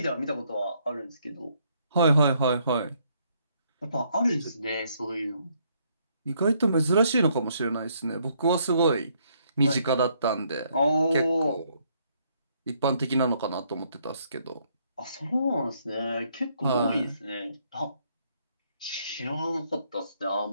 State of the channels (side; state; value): both; inverted; correlation -0.70